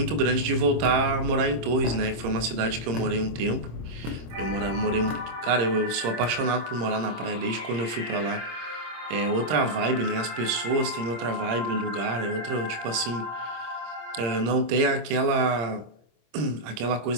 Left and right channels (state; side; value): late; left; 26 ms